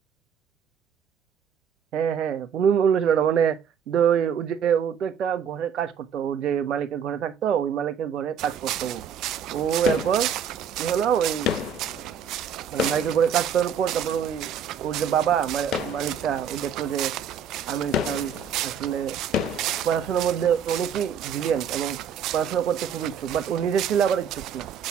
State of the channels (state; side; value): quieter; left; 7.0 dB